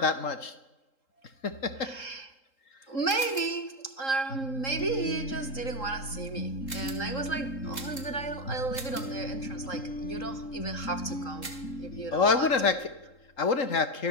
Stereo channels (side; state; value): right; late; 3.8 ms